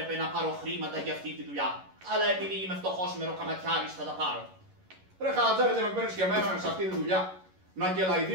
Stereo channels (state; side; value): late; left; 11 ms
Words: να πάρω χρήματα για αυτή τη δουλειά. Αλλά επειδή είμαι φτωχός μεροκαματιάρης θα τα πάρω. Ρε Χατζάρη, δεν με παίρνεις και εμένα σε αυτή τη δουλειά? Να